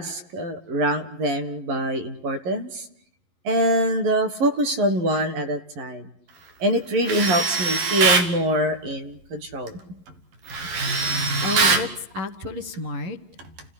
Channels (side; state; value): left; late; 11 ms